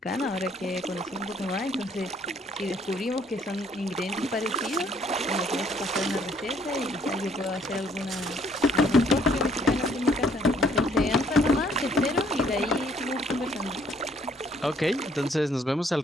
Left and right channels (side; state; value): both; normal; correlation 0.64